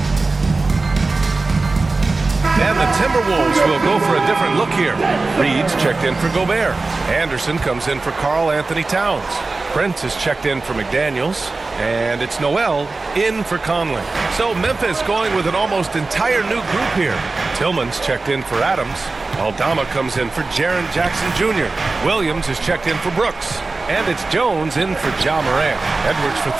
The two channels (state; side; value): quieter; left; 3.6 dB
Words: And the Timberwolves will go for a different look here. Reed's checked in for Gobert. Anderson comes in for Karl Anthony Towns. Prince is checked in for McDaniels. And it's Noel in for Conley. So Memphis going with an almost entire new group here. Tillman's checked in for Adams. Aldama comes in for Jaren Jackson Jr. Williams is checked in for Brooks. And it's Jones in for Ja Morant. Edwards for